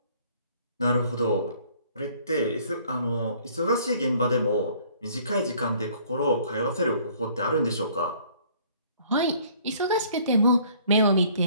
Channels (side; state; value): both; inverted; correlation -0.58